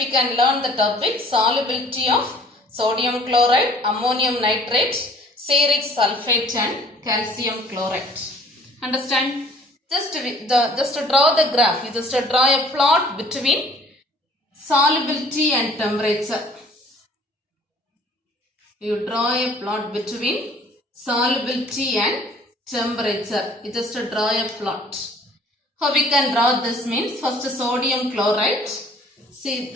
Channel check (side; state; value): both; normal; correlation 0.54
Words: can learn the topic. Solubility of sodium chloride, ammonium nitrate, ceoric sulfate and calcium chloride. Understand? Just to draw the graph, you just draw a plot between solubility and temperature. You draw a plot between solubility and temperature. You just draw a plot. How we can draw this means, first sodium chloride. See,